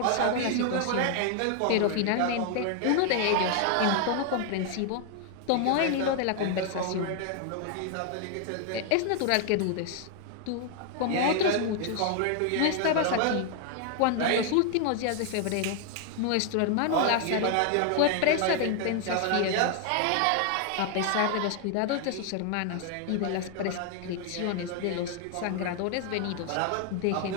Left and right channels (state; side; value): different; both; correlation 0.00